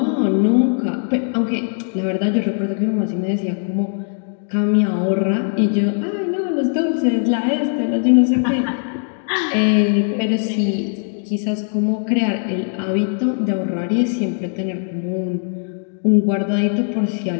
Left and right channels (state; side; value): silent; right; 58 dB below the other